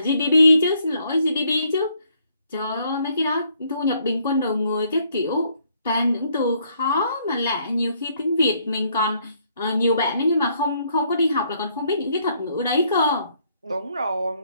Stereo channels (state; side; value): inverted; both; correlation -0.69